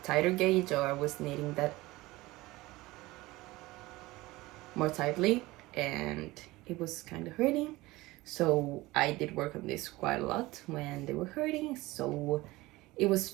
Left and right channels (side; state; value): left; quieter; 19.9 dB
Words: tighter gauge, or I was knitting that more tightly and it was kind of hurting. So I did work on this quite a lot when they were hurting, so it was